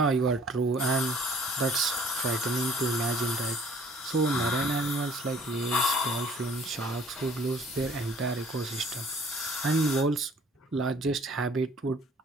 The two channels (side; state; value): both; normal; correlation 0.55